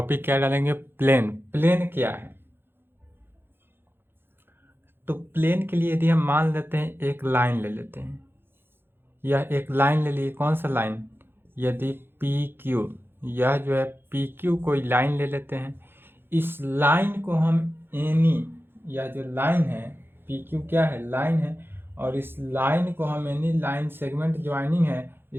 क्या डालेंगे? प्लेन। प्लेन क्या है? तो प्लेन के लिए यदि हम मान लेते हैं, एक लाइन ले लेते हैं, यह एक लाइन ले लिए। कौन सा लाइन? यदि पी क्यू, यह जो है पी क्यू कोई लाइन ले लेते हैं। इस लाइन को हम एनी, यह जो लाइन है पी क्यू क्या है? लाइन है। और इस लाइन को हम एनी लाइन सेगमेंट ज्वाइनिंग है,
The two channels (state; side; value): late; left; 0.10 ms